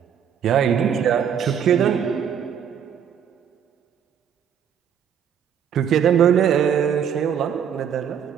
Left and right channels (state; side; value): quieter; left; 8.3 dB